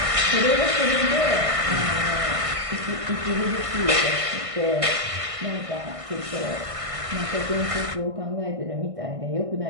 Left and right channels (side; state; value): left; late; 1.5 ms